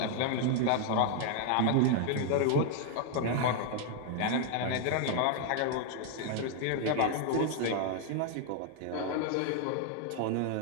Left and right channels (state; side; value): different; both; correlation 0.00